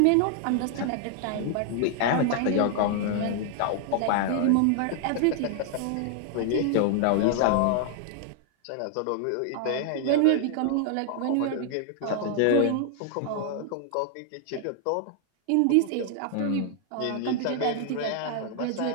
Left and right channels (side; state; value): both; different; correlation 0.00